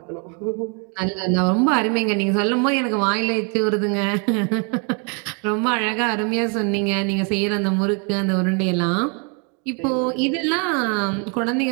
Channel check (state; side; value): quieter; left; 36.3 dB